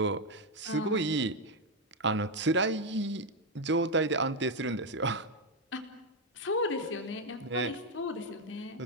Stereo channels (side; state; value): both; normal; correlation 0.04